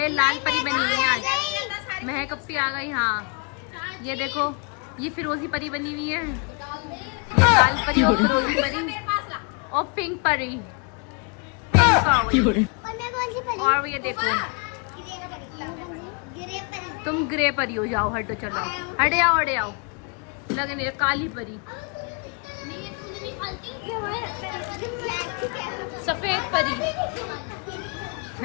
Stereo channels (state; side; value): quieter; right; 35.9 dB